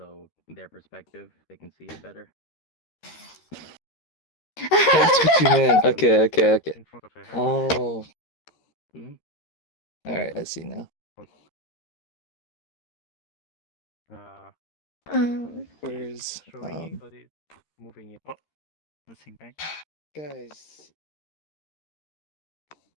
their perspective, they can see it better. That's what you meant. Okay. In front of her head. Oh. Alright, I see now. Where's showing it or it's moving it? Oh, nothing, right? guys?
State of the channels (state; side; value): late; right; 13 ms